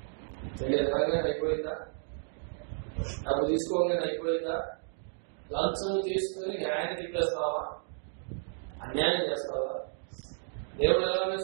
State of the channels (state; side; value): silent; left; digital silence